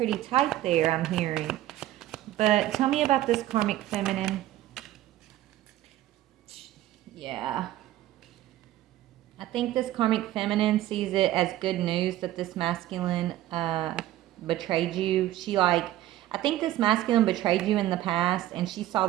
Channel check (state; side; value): quieter; left; 14.4 dB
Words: tight there, I'm hearing. But tell me about this karmic feminine. Yeah. I think this karmic feminine sees it as good news that this masculine betrayed you. I think this masculine betrayed you in the past, and she saw